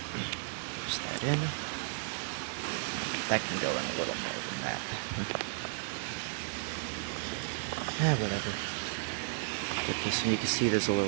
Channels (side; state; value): left; silent; digital silence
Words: that in. That can go in a little more than that. Whatever. Get this, and you can see there's a